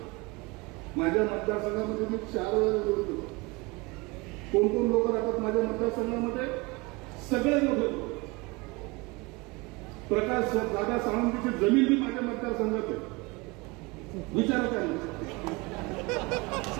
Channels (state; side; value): quieter; left; 25.1 dB